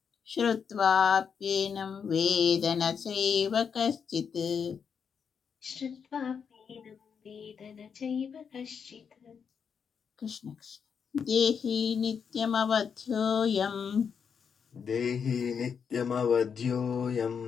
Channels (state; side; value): quieter; right; 6.7 dB